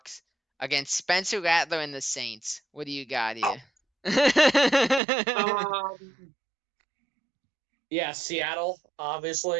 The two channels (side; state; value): left; drops out; at 5.0 s